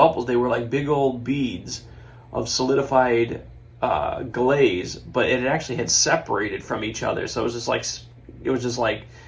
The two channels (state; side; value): identical; both; correlation 1.00